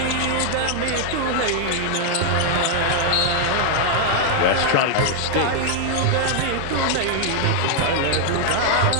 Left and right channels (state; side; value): different; both; correlation 0.00